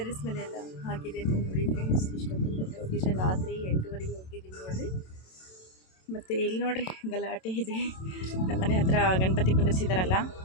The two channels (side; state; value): right; late; 27 ms